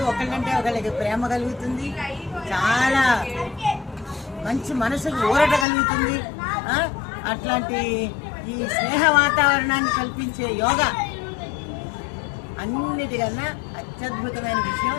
ఒకళ్ళంటే ఒకళ్ళకి ప్రేమ కలుగుతుంది, చాలా మంచి మనసుకు ఊరట కలుగుతుంది. అట్లాంటి ఈ స్నేహ వాతావరణాన్ని కల్పించే యోగా అన్నిటికన్నా అత్యద్భుతమైన విషయం.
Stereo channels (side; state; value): right; drops out; at 5.7 s